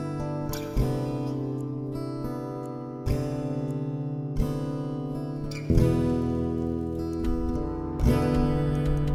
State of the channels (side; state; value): both; identical; correlation 1.00